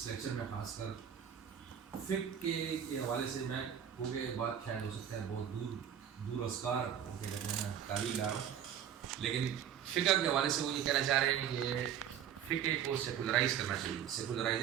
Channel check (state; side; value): quieter; left; 9.2 dB